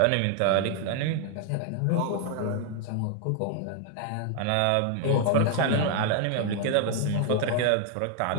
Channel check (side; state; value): both; different; correlation 0.00